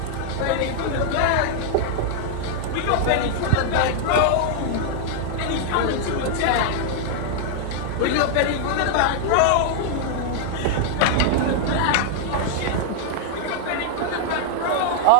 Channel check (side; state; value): both; different; correlation -0.01